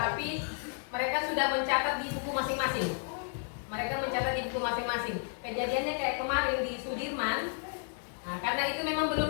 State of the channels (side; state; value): right; silent; 56 dB below the other